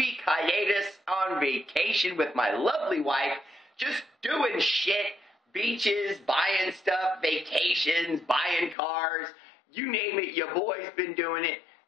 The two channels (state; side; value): drops out; right; at 8.8 s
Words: hiatus on vacation with my lovely wife. Just doing shit, beaches, buying stuff, vacations, buying cars. You name it, your boy's been doing it.